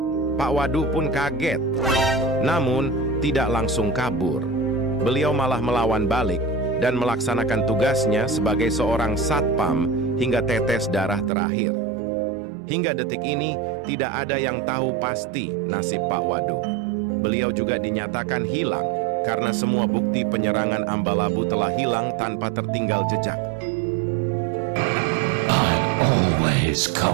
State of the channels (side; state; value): left; drops out; at 11.3 s